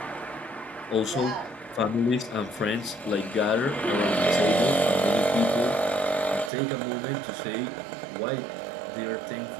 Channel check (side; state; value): left; drops out; at 6.5 s